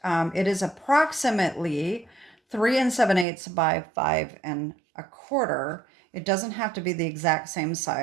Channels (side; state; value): left; drops out; at 3.2 s